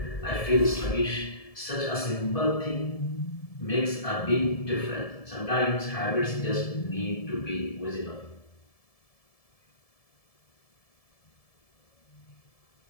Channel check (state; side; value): late; right; 1.7 ms